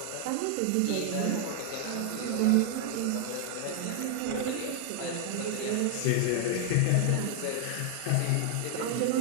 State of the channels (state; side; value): different; both; correlation 0.00